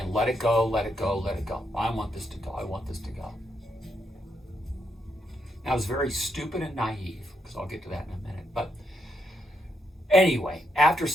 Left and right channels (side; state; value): both; normal; correlation 0.80